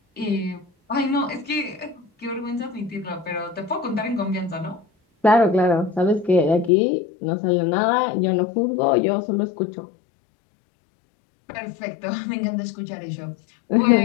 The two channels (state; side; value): drops out; right; at 6.7 s